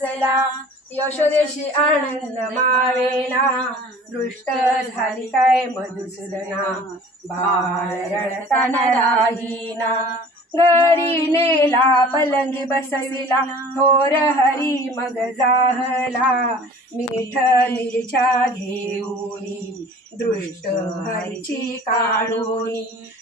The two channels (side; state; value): both; normal; correlation 0.46